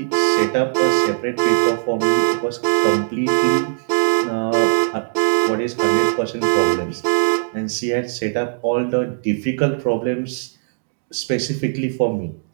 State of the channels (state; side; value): silent; left; digital silence